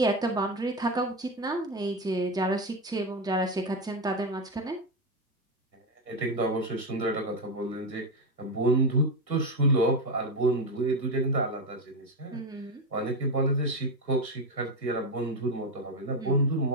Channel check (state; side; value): normal; both; correlation 0.12